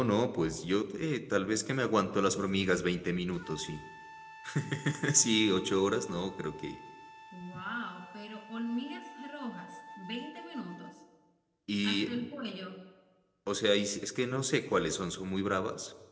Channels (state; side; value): identical; both; correlation 1.00